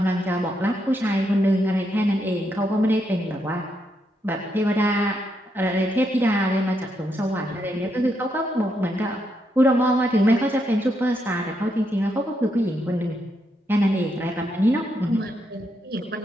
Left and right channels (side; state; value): both; normal; correlation 0.80